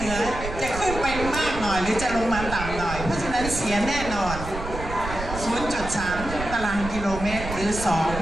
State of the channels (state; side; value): noise; right; rumble, 8 dB below the sound